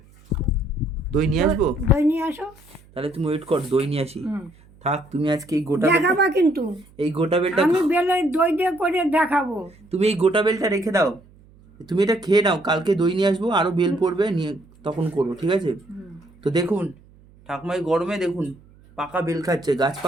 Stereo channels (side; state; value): right; noise; hum, 27 dB below the sound